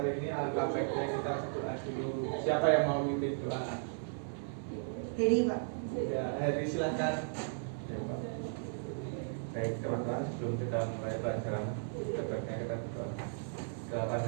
ini, alangkah baiknya kita berdoa dulu. Siapa yang mau mimpin doa? Heri, Pak. Ya, Heri silahkan. Ya, Pak. Baik teman-teman, sebelum kita mulai pelajaran, sebaiknya kita berdoa. Doakan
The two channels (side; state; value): left; silent; 54 dB below the other